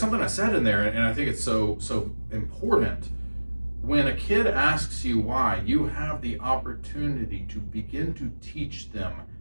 I said in there, and I think it's so important. When a kid asks you why, you have the opportunity to begin to teach them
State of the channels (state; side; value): inverted; both; correlation -1.00